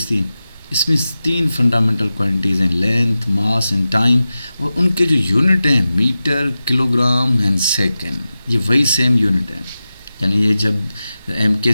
थी। इसमें 3 फंडामेंटल क्वांटिटीज़ हैं, लेंथ, मास एंड टाइम। और उनके जो यूनिट हैं मीटर, किलोग्राम एंड सेकंड, ये वही सेम यूनिट है। यानी ये जब एमके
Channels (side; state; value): both; inverted; correlation -0.94